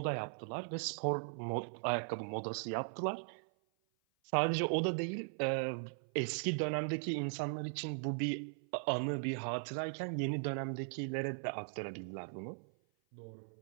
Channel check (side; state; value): left; silent; 52 dB below the other